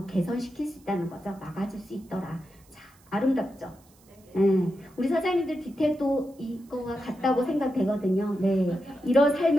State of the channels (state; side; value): noise; right; hiss, 30 dB below the sound